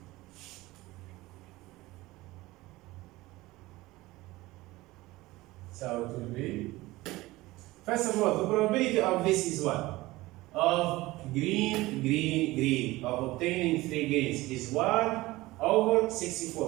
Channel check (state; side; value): quieter; left; 19.3 dB